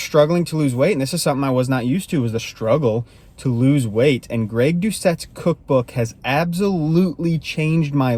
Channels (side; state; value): both; identical; correlation 1.00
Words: to lose weight, and this is something I was not used to, was the struggle to lose weight. And Greg Doucette's cookbook has absolutely changed my